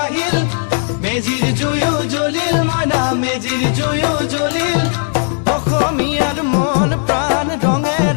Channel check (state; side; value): silent; right; 60 dB below the other